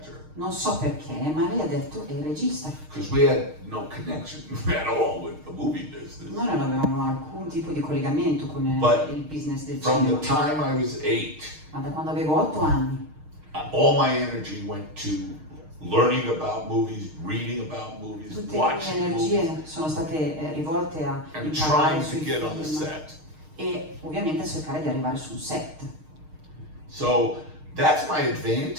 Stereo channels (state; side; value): late; left; 6.5 ms